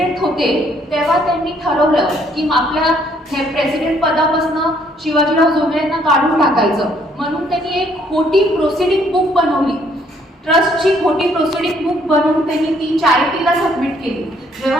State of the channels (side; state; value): both; normal; correlation 0.66